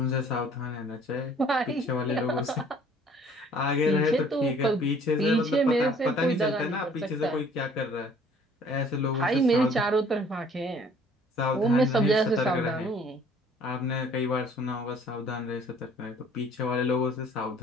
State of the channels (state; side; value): normal; both; correlation 0.56